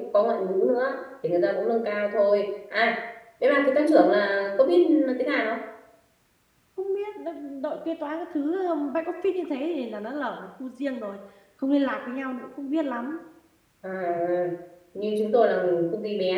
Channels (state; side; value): identical; both; correlation 1.00